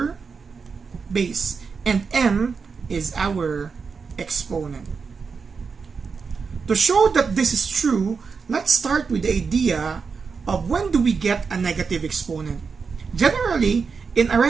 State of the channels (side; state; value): left; quieter; 5.3 dB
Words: base and m is our exponent. To show that this is true, let's start with the idea of when do we get a negative exponent. Generally, in